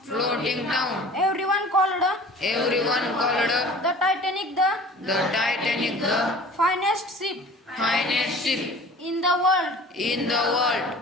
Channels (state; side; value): normal; both; correlation 0.44